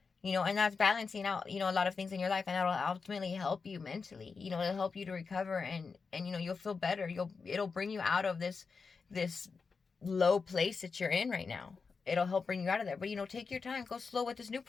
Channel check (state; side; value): quieter; right; 4.9 dB